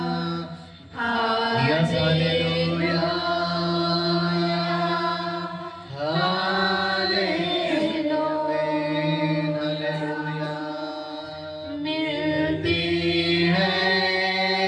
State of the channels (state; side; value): identical; both; correlation 1.00